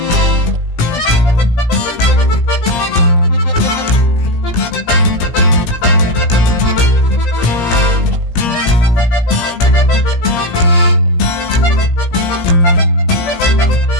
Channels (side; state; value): right; late; 17 ms